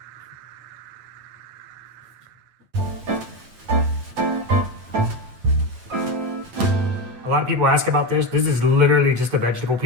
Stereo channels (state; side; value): late; left; 9.0 ms